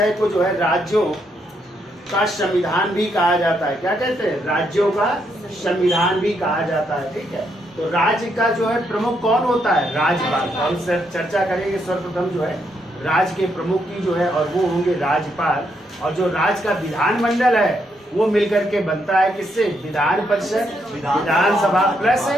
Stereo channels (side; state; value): both; normal; correlation 0.77